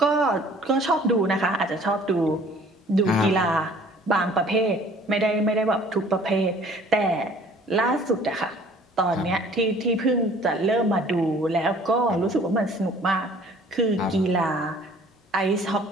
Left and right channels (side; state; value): both; normal; correlation 0.53